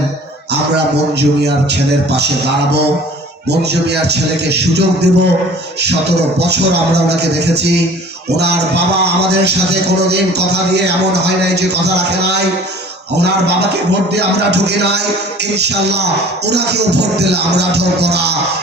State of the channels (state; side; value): normal; both; correlation 0.48